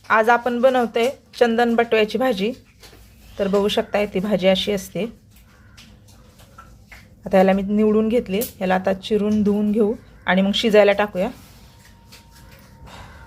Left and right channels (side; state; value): both; identical; correlation 1.00